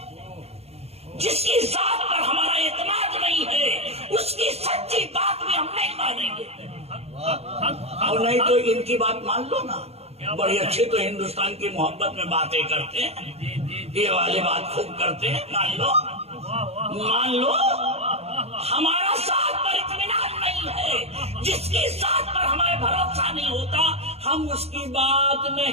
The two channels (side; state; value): left; late; 0.30 ms